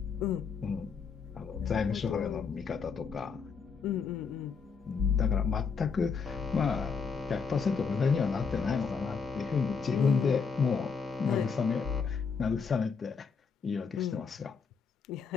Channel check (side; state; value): right; quieter; 5.6 dB